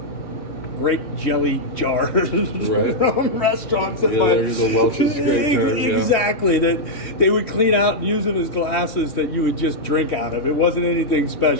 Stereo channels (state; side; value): late; right; 3.1 ms